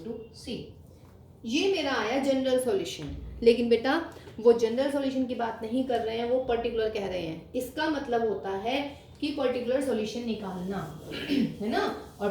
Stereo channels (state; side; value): identical; both; correlation 1.00